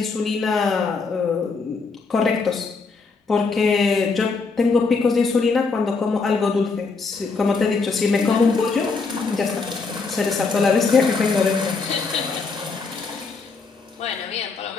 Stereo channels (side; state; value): right; quieter; 4.4 dB